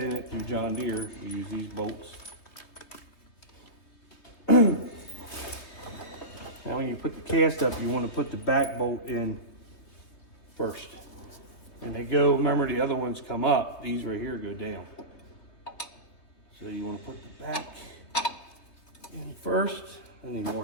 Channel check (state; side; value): late; right; 3.2 ms